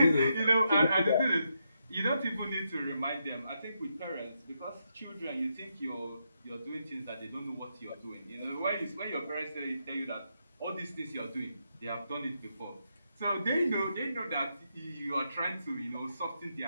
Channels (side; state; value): both; inverted; correlation -0.82